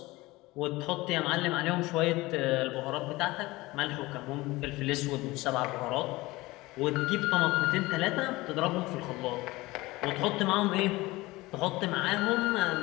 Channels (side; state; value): right; quieter; 20.4 dB